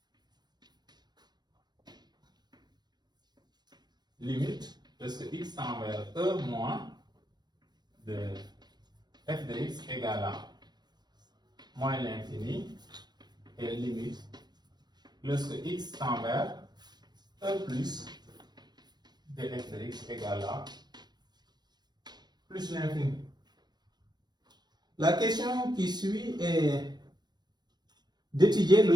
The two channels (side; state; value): left; late; 0.20 ms